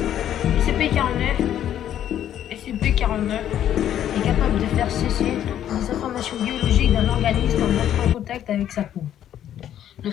SCP-49 est capable de faire cesser les informations biologiques d'un organisme en entrant en contact avec sa peau. Le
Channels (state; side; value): quieter; right; 10.8 dB